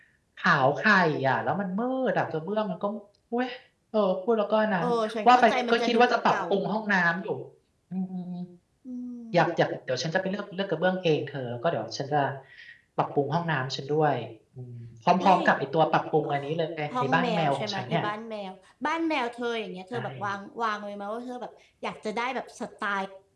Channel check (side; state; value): both; identical; correlation 1.00